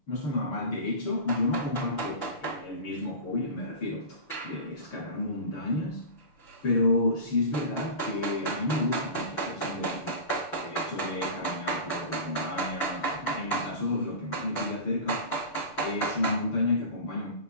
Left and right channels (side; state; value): right; late; 6.8 ms